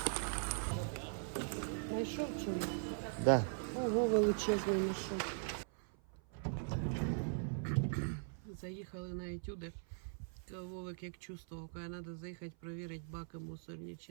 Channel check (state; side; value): silent; left; 51 dB below the other